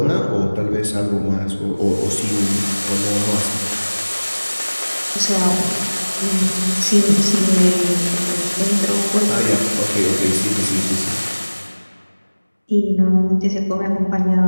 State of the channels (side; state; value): both; inverted; correlation -1.00